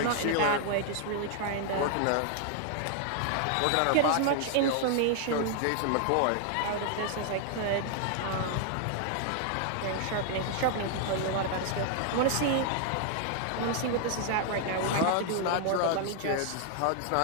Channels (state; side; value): different; both; correlation 0.00